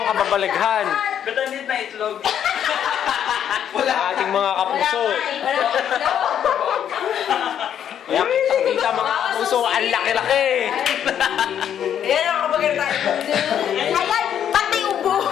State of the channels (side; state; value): right; quieter; 9.5 dB